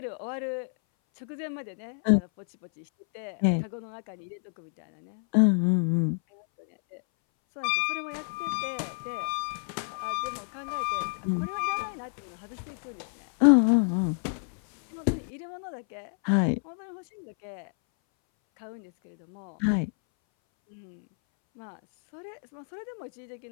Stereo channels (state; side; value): silent; right; 59 dB below the other